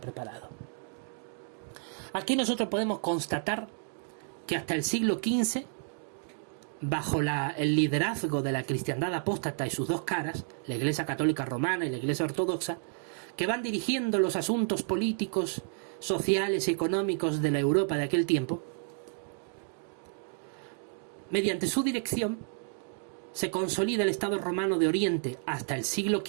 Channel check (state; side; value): silent; left; 57 dB below the other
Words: Aquí nosotros podemos constatar que hasta el siglo XV, bajo el liderazgo de la cristiandad apóstata y sus dos caras, la Iglesia Católica Romana y la Iglesia Ortodoxa, que van dirigiendo los asuntos políticos, sociales y económicos de la Europa de aquel tiempo, mediante su dirección se consolida el Estado romano de Oriente hasta el siglo